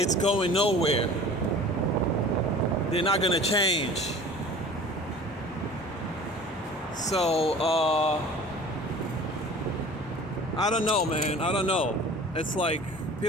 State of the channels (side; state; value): both; normal; correlation 0.43